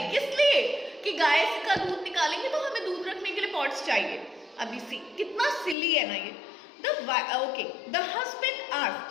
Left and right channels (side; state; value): right; drops out; at 5.8 s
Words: किस लिए? कि गाय का दूध निकालेंगे तो हमें दूध रखने के लिए पॉट्स चाहिए। अभी सी कितना सिली है ना ये। The husband asked,